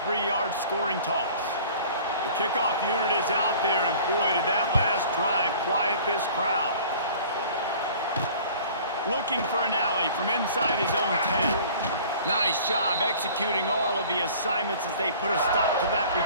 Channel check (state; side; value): inverted; both; correlation -0.47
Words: 3-yard scoring toss. The kickoff unit is out there, and boy, did that last drive quiet this crowd. Looking for an alley from inside his own 10. Nice job executing all of the assignments as they put a stop to that